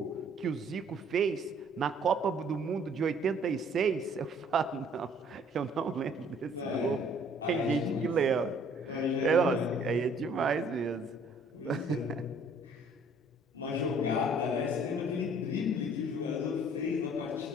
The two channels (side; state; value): both; normal; correlation 0.58